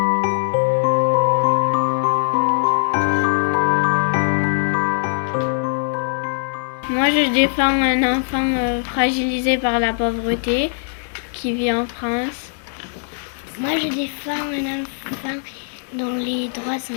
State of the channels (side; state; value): right; silent; digital silence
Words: Moi, je défends un enfant fragilisé par la pauvreté qui vit en France. Moi, je défends un enfant dont les droits